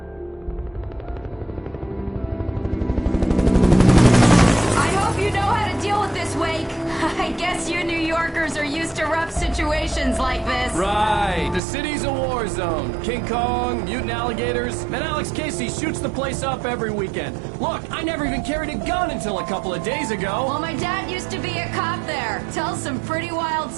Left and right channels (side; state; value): left; drops out; at 11.6 s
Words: I hope you know how to deal with this, Wake. I guess you New Yorkers are used to rough situations like this. Right. The city's a war zone. King Kong, mutant alligators, and Alex Casey shoots the place up every weekend. Look, I never even carried a gun until a couple of days ago. Well, my dad used to be a cop there. Tells some pretty wild